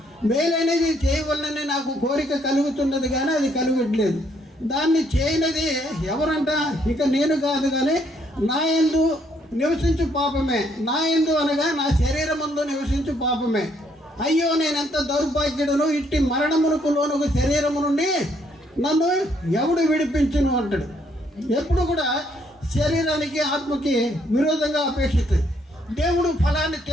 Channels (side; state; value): both; normal; correlation 0.70